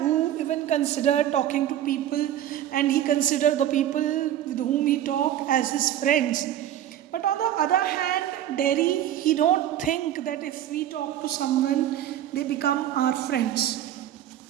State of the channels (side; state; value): left; quieter; 11.6 dB